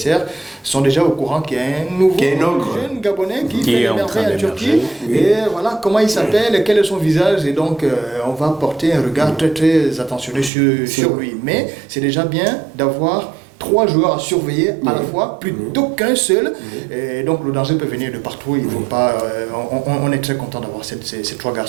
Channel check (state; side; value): drops out; left; at 10.5 s